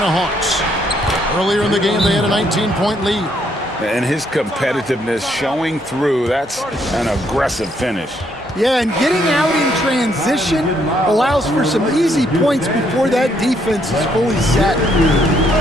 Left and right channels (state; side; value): normal; both; correlation 0.71